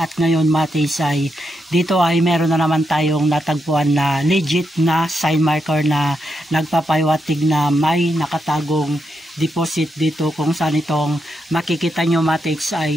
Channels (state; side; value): normal; both; correlation 0.83